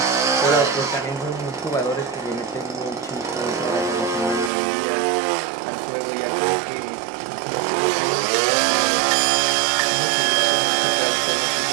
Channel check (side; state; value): left; drops out; at 4.5 s